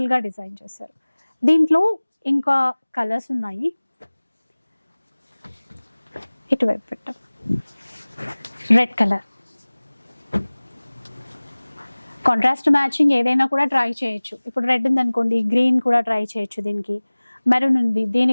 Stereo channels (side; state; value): both; inverted; correlation -1.00